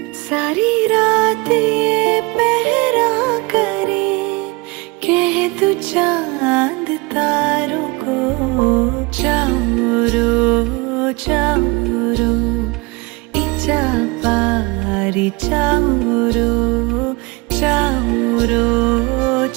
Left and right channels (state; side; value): quieter; left; 25.5 dB